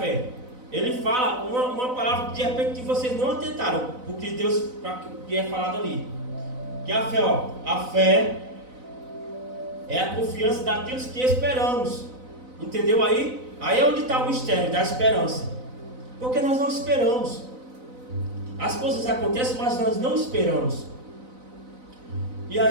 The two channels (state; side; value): late; left; 4.0 ms